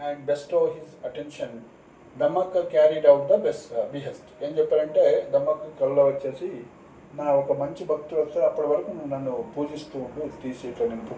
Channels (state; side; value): identical; both; correlation 1.00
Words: bestow his attention, Dammakka carried out the behest. ఏం చెప్పారంటే దమ్మక్క కళ్ళలో వచ్చేసి నా ఒక మంచి భక్తుడు వస్తే అప్పటి వరకు నువ్వు నన్ను పూజిస్తూ ఉండు, తీసి ఇట్లా నేను